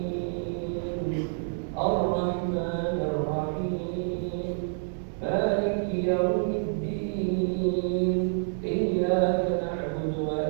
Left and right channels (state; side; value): silent; left; digital silence